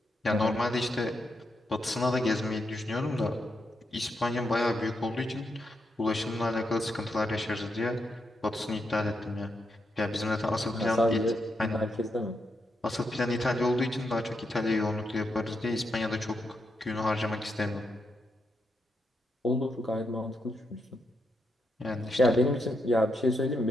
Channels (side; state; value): both; normal; correlation 0.82